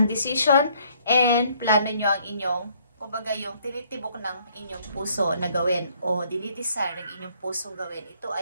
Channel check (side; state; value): both; inverted; correlation -0.65